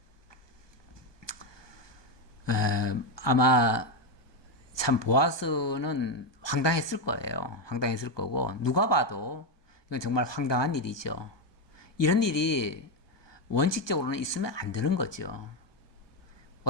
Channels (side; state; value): right; late; 1.2 ms